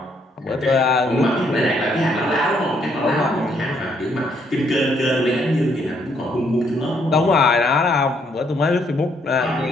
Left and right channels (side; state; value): both; normal; correlation 0.70